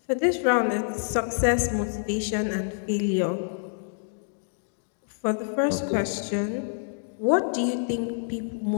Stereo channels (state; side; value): silent; right; digital silence